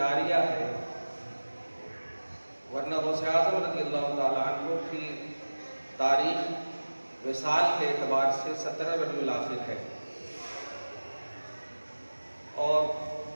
ہے، ورنہ غوث اعظم رضی اللہ تعالیٰ عنہ کی تاریخ وصال کے اعتبار سے 17 ربیع الاخر ہے، اور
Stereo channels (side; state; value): both; inverted; correlation -1.00